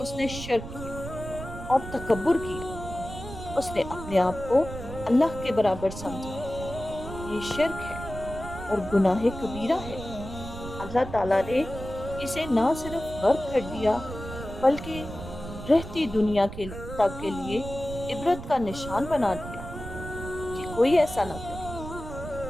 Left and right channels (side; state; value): right; noise; rumble, 10 dB below the sound